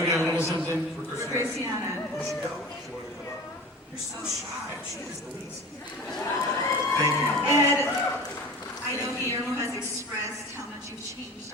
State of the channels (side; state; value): both; normal; correlation 0.37